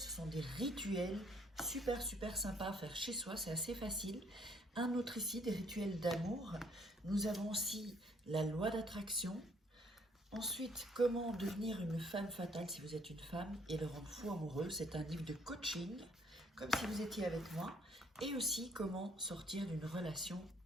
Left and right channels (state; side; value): normal; both; correlation 0.64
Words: sont des rituels super sympas à faire chez soi, c'est assez facile. Un autre ici, des rituels d'amour. Nous avons aussi la loi d'attraction. Ensuite, comment devenir une femme fatale si vous êtes une femme et le rendre fou amoureux. C'est un livre de coaching, comme si vous étiez avec moi. Et aussi, comment sortir d'une relation